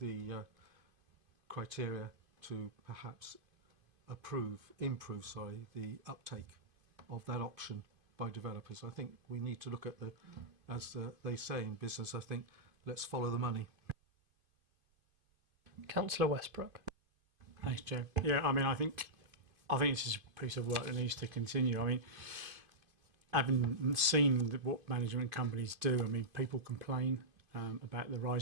criteria to perhaps improve the uptake of that option by developers. I think we need to look at they say in business, I think, let's follow the money. Councillor Westbrook. Thanks, Joe. Yeah, I mean, I think this is a piece of work that needs to continue. I mean, having seen what management companies do, I mean, people complain about the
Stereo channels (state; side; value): late; left; 2.5 ms